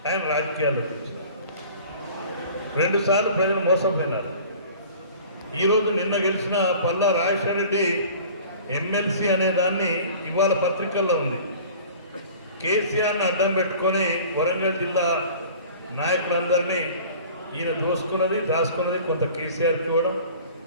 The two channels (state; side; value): inverted; both; correlation -0.45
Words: ఆయన రాజకీయాల్లోకి వచ్చారు. 2 సార్లు ప్రజలు మోసపోయినారు. ఈరోజు నిన్న గెలిచిన పల్లా రాజశేఖర రెడ్డి ఎమ్మెల్సీ అనే దాన్ని ఇవాళ పత్రికల్లో ఉంది. కేసీఆర్ని అడ్డం పెట్టుకొని వరంగల్ జిల్లా నాయకులందరినీ ఈయన దాచుకున్నది కొంత కేసీఆర్కి ఇవ్వడం,